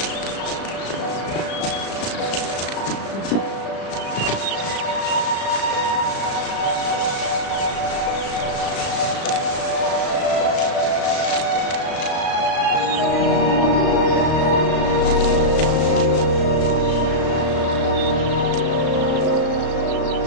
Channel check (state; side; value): late; right; 36 ms